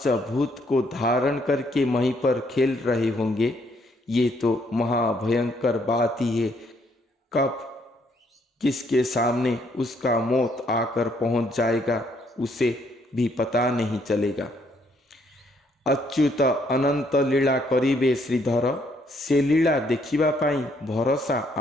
को धारण करके वहीं पर खेल रहे होंगे। ये तो महाभयंकर बात ही है। कब किसके सामने उसका मौत आकर पहुंच जाएगा उसे भी पता नहीं चलेगा। अच्युत अनंत लीला करिबे श्रीधर, से लीला देखिबा पाई भरोसा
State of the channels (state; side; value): normal; both; correlation 0.69